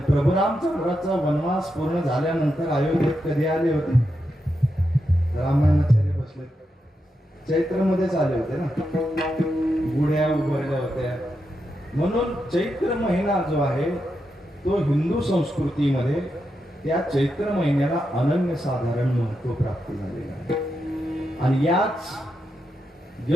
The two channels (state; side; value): normal; both; correlation 0.85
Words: प्रभू रामचंद्राचा वनवास पूर्ण झाल्यानंतर अयोध्येत कधी आले होते? रामायणाचार्य बसले चैत्र मध्येच आले होते ना, गुढ्या उभारल्या होत्या. म्हणून चैत्र महिना जो आहे तो हिंदू संस्कृतीमध्ये त्या चैत्र महिन्याला अनन्यसाधारण महत्व प्राप्त झालेलं आहे. आणि याच